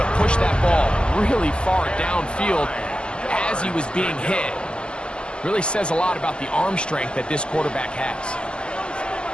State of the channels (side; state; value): right; late; 0.050 ms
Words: push that ball really far downfield as he was being hit. Really says a lot about the arm strength that this quarterback has.